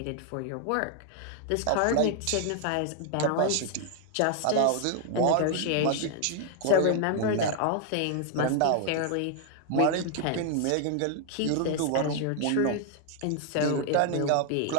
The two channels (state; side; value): different; both; correlation 0.00